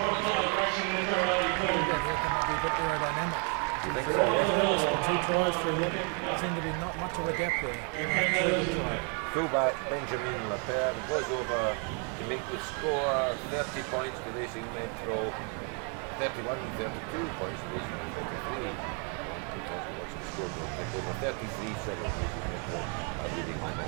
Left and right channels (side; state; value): left; quieter; 38.2 dB